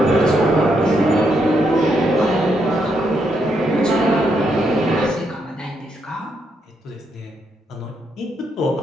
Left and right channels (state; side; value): normal; both; correlation 0.78